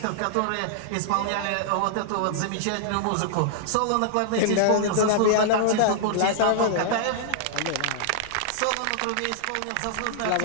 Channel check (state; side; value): different; both; correlation -0.01